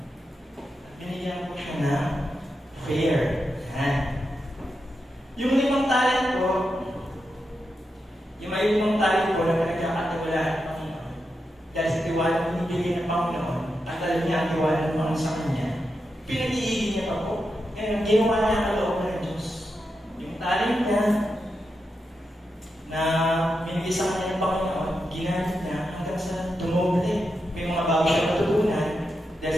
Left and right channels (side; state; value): both; normal; correlation 0.87